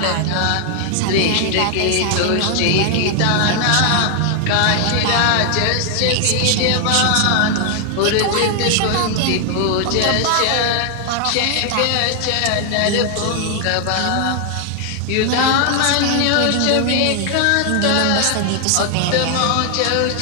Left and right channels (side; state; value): both; different; correlation 0.00